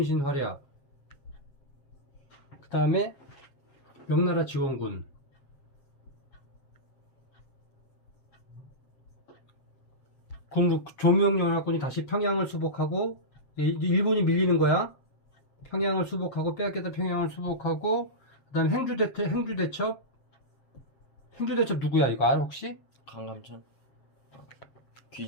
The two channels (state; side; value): late; right; 7.5 ms